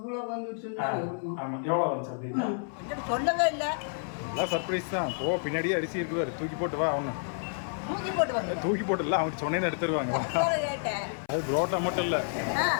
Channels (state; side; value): silent; right; 58 dB below the other